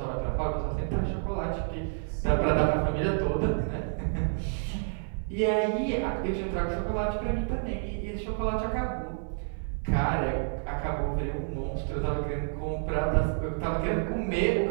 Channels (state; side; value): silent; left; digital silence